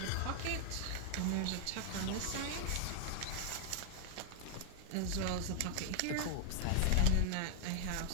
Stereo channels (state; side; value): different; both; correlation 0.00